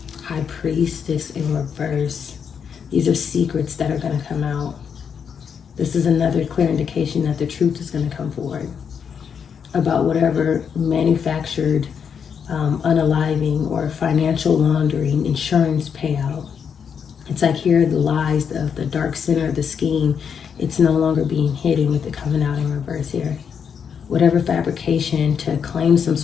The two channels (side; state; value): right; quieter; 7.1 dB